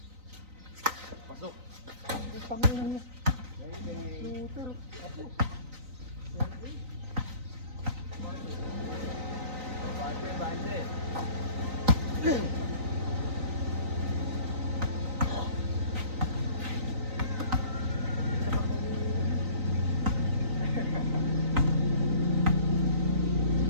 Pasok. Ang tangina niya. Shooter. Apo.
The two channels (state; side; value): late; left; 3.9 ms